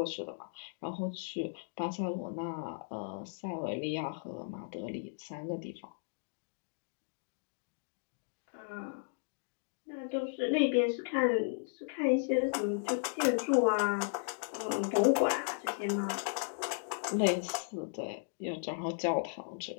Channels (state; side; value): silent; right; digital silence